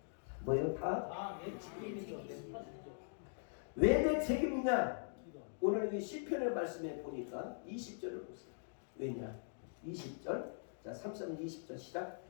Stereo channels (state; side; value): silent; right; digital silence